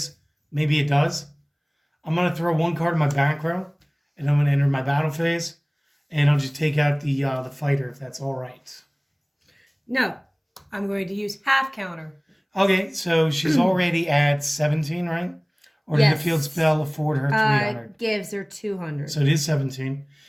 maybe it does. I'm going to throw one card in my back row, and I'm going to enter my battle phase, and I'll just take out the fighter, if that's all right. No, I'm going to use half counter. Okay, so she's already at 17, right? Or did the field spell afford her 300? Gives her 200. So it is 17.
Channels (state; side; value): identical; both; correlation 1.00